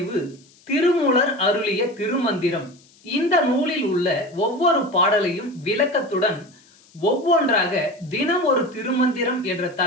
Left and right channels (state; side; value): noise; left; hiss, 29 dB below the sound